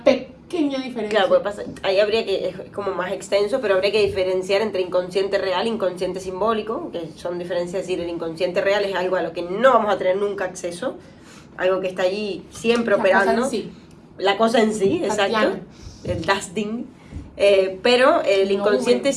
pequeña diferencia. Claro, ahí habría que, es como más extenso, pero habría que diferenciar entre inconsciente real e inconsciente simbólico, que son diferencias, es decir, el inconsciente real es algo a lo que no vamos a tener nunca acceso, algo que está allí siempre operando. Cosa en sí. La cosa en sí, exacto, Tatiana. el das Ding. Pero el inconsciente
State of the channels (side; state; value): both; identical; correlation 1.00